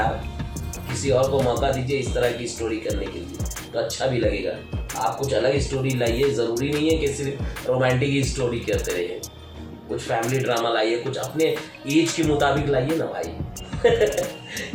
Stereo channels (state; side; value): identical; both; correlation 1.00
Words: किसी और को मौका दीजिए इस तरह की स्टोरी करने के लिए, तो अच्छा भी लगेगा। आप कुछ अलग स्टोरी लाइए, ज़रूरी नहीं है कि सिर्फ रोमांटिक ही स्टोरी करते रहिए, कुछ फैमिली ड्रामा लाइए, कुछ अपने एज के मुताबिक लाइए ना भाई।